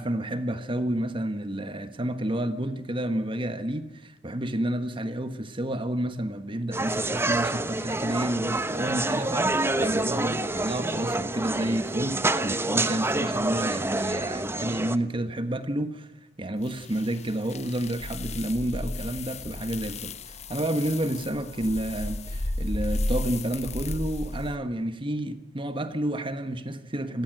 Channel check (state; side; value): normal; both; correlation 0.72